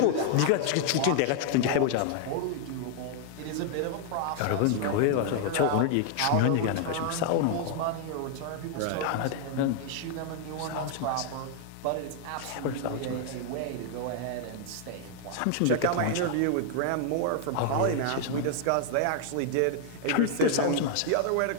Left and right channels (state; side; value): different; both; correlation 0.00